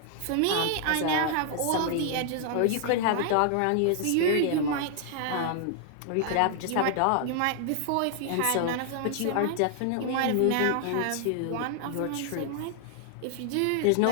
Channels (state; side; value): different; both; correlation 0.00